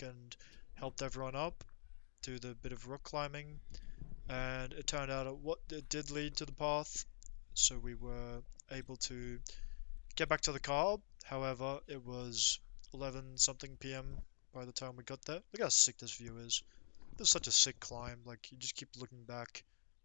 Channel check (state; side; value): silent; right; digital silence